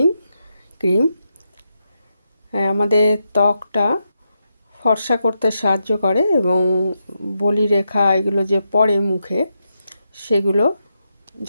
ক্রিম। আমাদের ত্বকটা ফর্সা করতে সাহায্য করে এবং বলিরেখা এগুলো যে পড়ে মুখে, সেগুলো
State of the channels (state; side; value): inverted; both; correlation -0.85